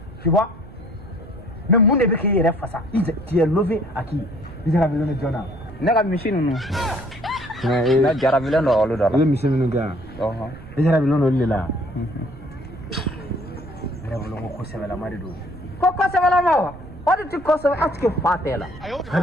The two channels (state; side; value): noise; right; rumble, 18 dB below the sound